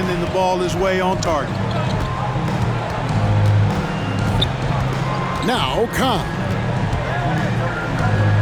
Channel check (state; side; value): identical; both; correlation 1.00